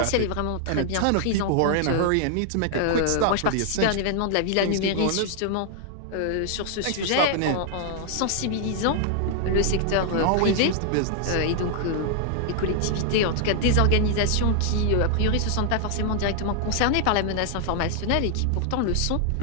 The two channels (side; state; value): both; different; correlation 0.00